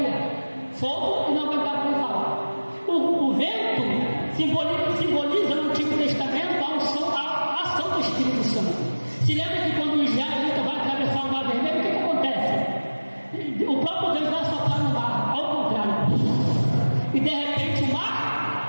fogo e não aguentaria falar. O vento simboliza no Antigo Testamento a ação do Espírito Santo. Se lembra que quando o israelita vai atravessar o mar vermelho, o que acontece? O próprio Deus vai soprar no mar, ao contrário. E de repente o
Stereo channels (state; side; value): inverted; both; correlation -1.00